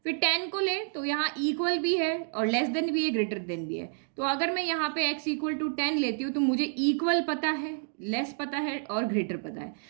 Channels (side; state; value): left; silent; digital silence